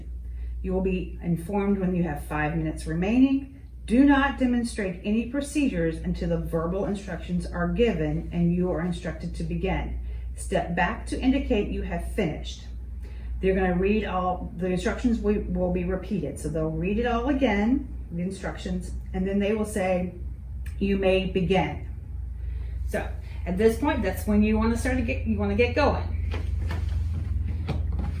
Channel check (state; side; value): identical; both; correlation 1.00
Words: You will be informed when you have 5 minutes remaining. Do not demonstrate any procedures until the verbal instructions are given and you are instructed to begin. Step back to indicate you have finished. They're going to read all the instructions. Will be repeated, so they'll read it all again, the instructions, and then they will say, "You may begin." So at this point, that's when you want to start to get going.